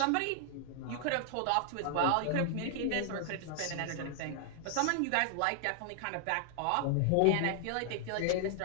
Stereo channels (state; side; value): different; both; correlation 0.00